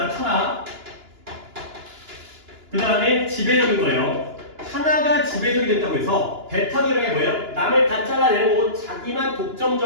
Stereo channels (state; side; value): late; left; 2.9 ms